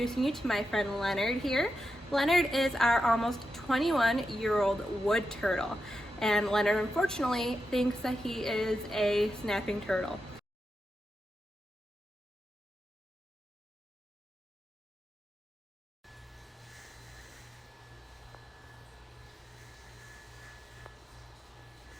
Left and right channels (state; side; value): normal; both; correlation 0.87